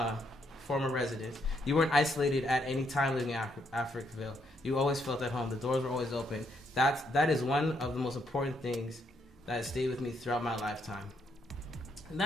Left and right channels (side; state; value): both; normal; correlation 0.74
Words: former residents. You weren't isolated at any time living in Africville. You always felt at home. The doors were always open. That is one of the most important things that has stayed with me throughout my lifetime. And